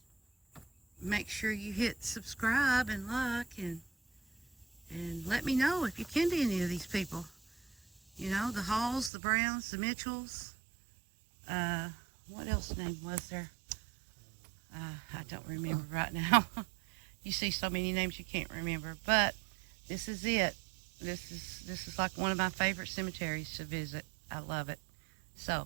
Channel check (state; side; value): drops out; left; at 9.1 s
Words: make sure you hit subscribe and like and let me know if you ken to any of these people. You know, the Halls, the Browns, the Mitchells. What else name was there? I don't remember right now. You see so many names you can't remember. But this is it. This is like one of my favorite cemeteries to visit. I love it.